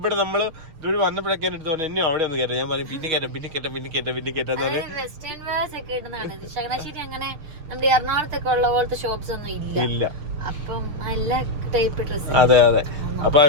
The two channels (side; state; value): left; late; 6.6 ms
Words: നമ്മള് ഇതുവഴി വന്നപ്പോഴൊക്കെ എടുത്തു പറഞ്ഞു എന്നെ അവിടെ ഒന്ന് കയറ്റാം. ഞാൻ പറഞ്ഞു പിന്നെ കയറ്റാന്ന് പറഞ്ഞു. വെസ്റ്റേൺ വെയർസ് ഒക്കെ ഇടുന്നതാണ്. ചങ്ങനാശ്ശേരി അങ്ങനെ നമ്മുടെ എറണാകുളത്തൊക്കെ ഉള്ള പോലത്തെ ഷോപ്സ് ഒന്നും ഇല്ല. അപ്പം എല്ലാ ടൈപ്പ് ഡ്രസ്. അതെ അതെ. അപ്പൊ